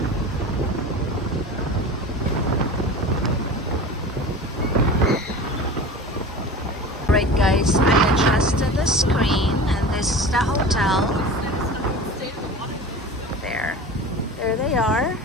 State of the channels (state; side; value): normal; both; correlation 0.35